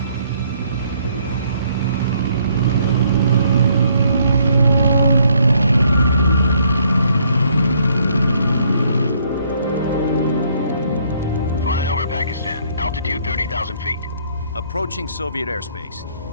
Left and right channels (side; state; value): both; inverted; correlation -0.66